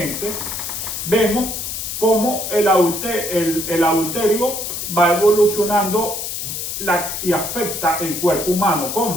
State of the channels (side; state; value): left; noise; hiss, 5 dB below the sound